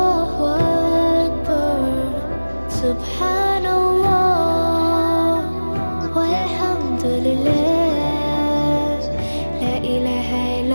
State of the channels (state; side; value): inverted; both; correlation -1.00